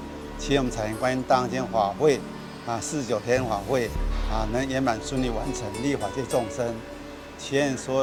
我们彩云观音大行间法会49天法会能圆满顺利完成，利益法界众生。祈愿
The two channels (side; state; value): both; identical; correlation 1.00